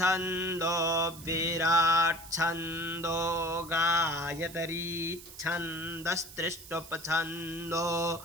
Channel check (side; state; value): right; noise; hiss, 16 dB below the sound